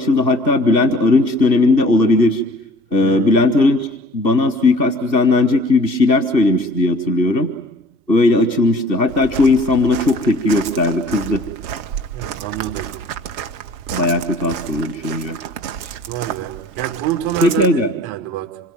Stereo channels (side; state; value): left; late; 3.3 ms